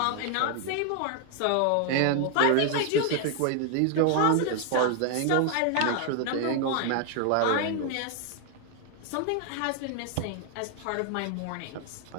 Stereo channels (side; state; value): both; different; correlation 0.00